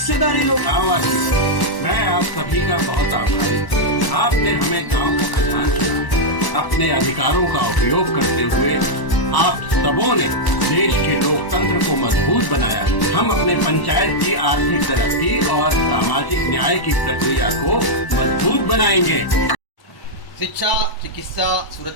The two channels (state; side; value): late; right; 1.0 ms